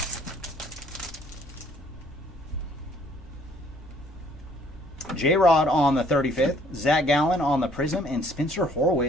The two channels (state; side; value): normal; both; correlation 0.61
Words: J-Rod on the 35th, Zach Gallen on the Prism, and Spencer